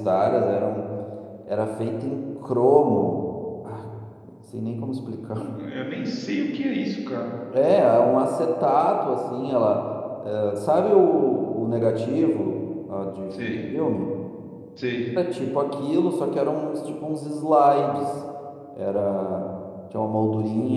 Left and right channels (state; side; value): identical; both; correlation 1.00